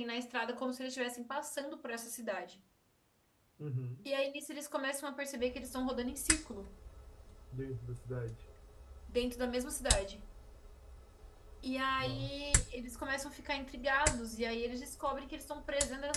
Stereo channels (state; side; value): identical; both; correlation 1.00